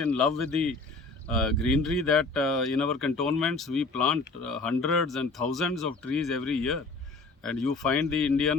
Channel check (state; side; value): quieter; right; 3.6 dB